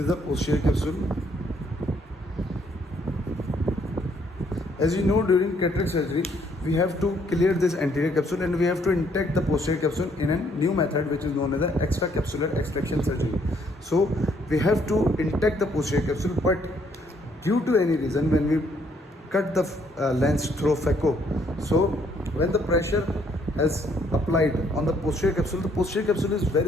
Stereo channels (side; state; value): both; normal; correlation 0.68